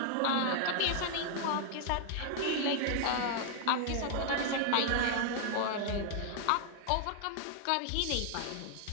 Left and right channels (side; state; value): both; different; correlation -0.01